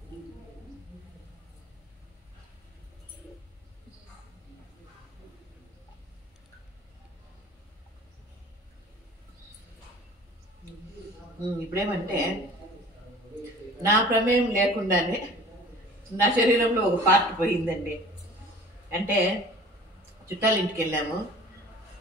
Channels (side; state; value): both; normal; correlation 0.45